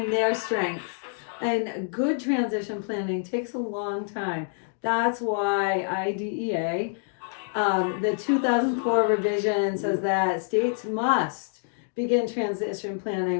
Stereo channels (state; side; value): silent; right; digital silence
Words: their strengths. And good transition planning takes a long time. That's why IDEA, the 2004 revision, says that states must begin transition